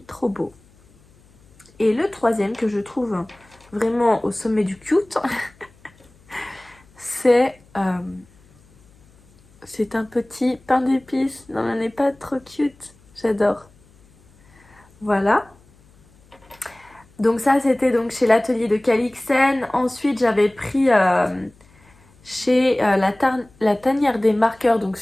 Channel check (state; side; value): noise; left; hum, 29 dB below the sound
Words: trop beau. Et le troisième que je trouve vraiment au sommet du cute, c'est un petit pain d'épices. Non, elle n'est pas trop cute. J'adore. Voilà. Donc ça, c'était donc chez l'atelier de Calixen. Ensuite, j'avais pris chez la tanière des marqueurs, donc